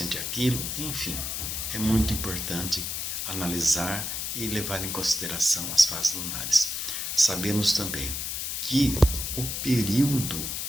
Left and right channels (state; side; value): noise; left; hiss, 3 dB below the sound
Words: aquilo, enfim. É muito importante analisar e levar em consideração as fases lunares. Sabemos também que o período